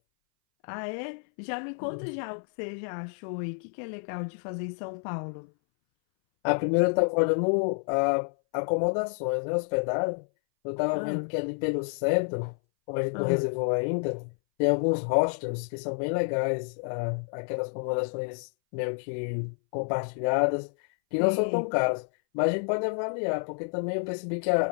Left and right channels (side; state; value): right; silent; 59 dB below the other